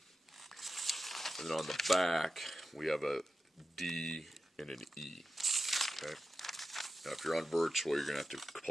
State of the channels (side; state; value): both; normal; correlation 0.92